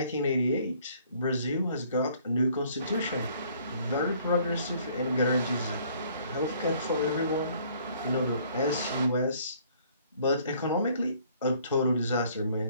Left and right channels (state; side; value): inverted; both; correlation -0.60